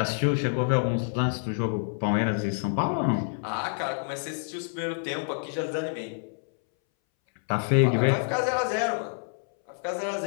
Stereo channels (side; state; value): right; silent; 60 dB below the other